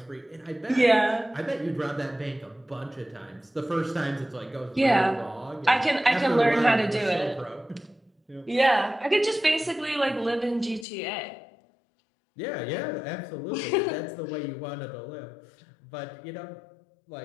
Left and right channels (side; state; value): right; drops out; at 10.9 s